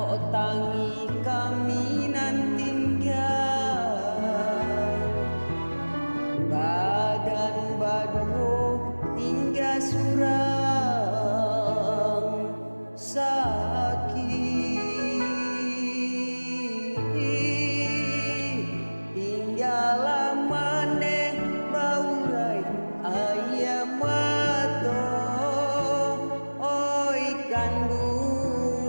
tangi kami nan tinggal, badan baduo tinggal surang sakit, tinggal maneh baurai ayam mato oi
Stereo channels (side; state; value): both; inverted; correlation -1.00